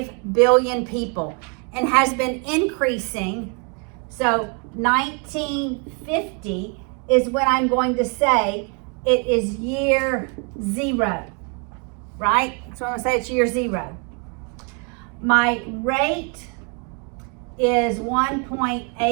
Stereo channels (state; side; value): quieter; left; 36.6 dB